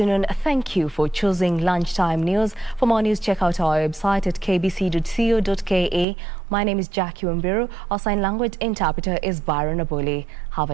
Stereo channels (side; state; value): left; drops out; at 6.1 s